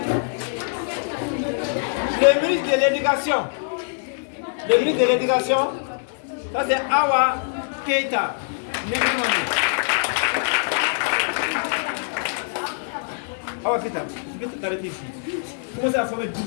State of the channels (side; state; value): right; silent; 63 dB below the other